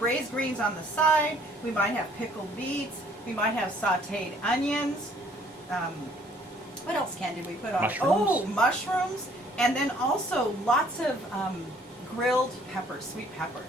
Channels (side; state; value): both; normal; correlation 0.60